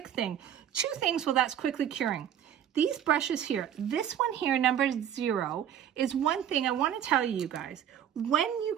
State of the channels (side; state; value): left; quieter; 9.9 dB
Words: thing. Two things while that's quickly curing. These brushes here, this one here, number 0, is one thing I want to tell you guys. When you